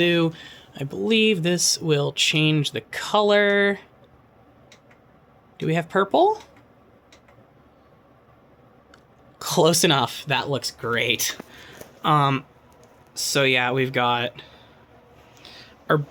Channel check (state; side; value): identical; both; correlation 1.00